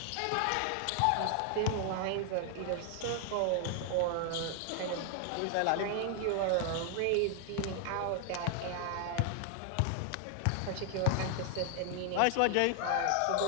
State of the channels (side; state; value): both; different; correlation 0.00